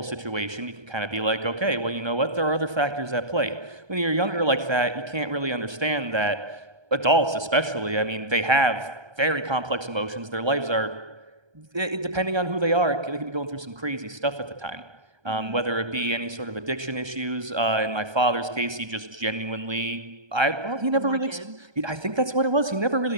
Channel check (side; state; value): left; late; 1.3 ms